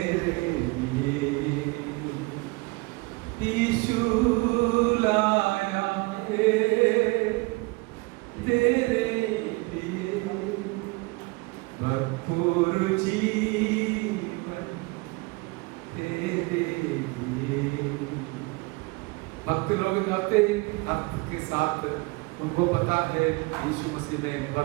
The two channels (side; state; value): left; quieter; 25.6 dB